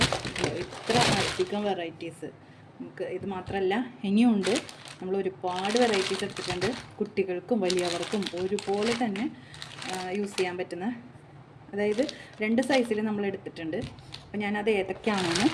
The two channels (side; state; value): both; identical; correlation 1.00